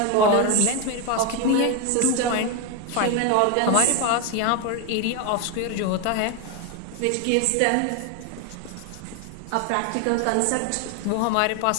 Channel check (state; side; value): different; both; correlation 0.02